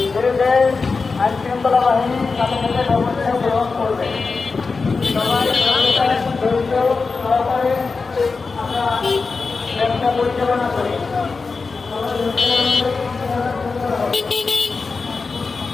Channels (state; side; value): quieter; right; 4.4 dB